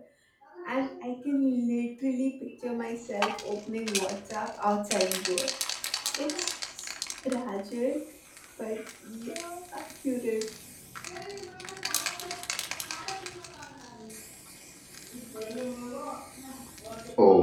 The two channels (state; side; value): identical; both; correlation 1.00